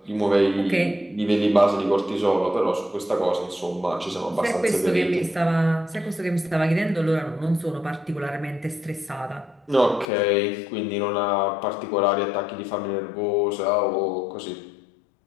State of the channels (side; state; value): right; drops out; at 10.1 s